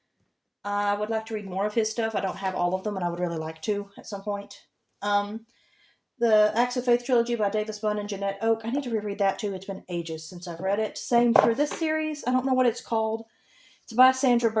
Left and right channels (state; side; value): identical; both; correlation 1.00